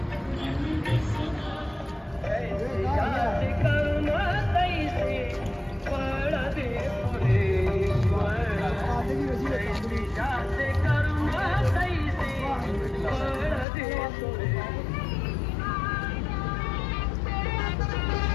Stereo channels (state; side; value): drops out; right; at 13.7 s